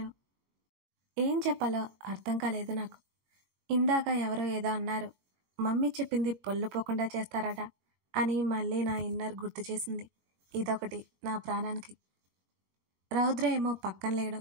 ఏం చెప్పాలో అర్థం కాలేదు నాకు. ఇందాక ఎవరో ఏదో అన్నారు, మమ్మీ చెప్పింది పొల్లుపోకుండా చేస్తారట అని మళ్ళీ నా ఇన్నర్ గుర్తు చేసింది. ఇదొకటి నా ప్రాణానికి. రౌద్ర ఏమో పక్కన లేడు.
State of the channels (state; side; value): late; left; 22 ms